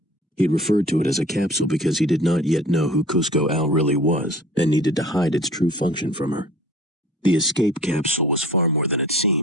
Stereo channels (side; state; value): both; normal; correlation 0.46